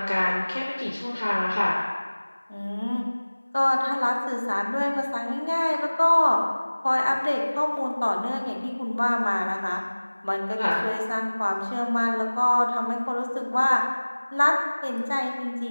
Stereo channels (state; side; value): inverted; both; correlation -1.00